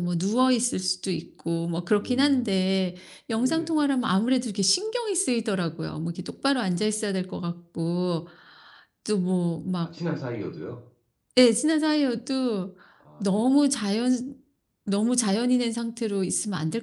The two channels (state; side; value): identical; both; correlation 1.00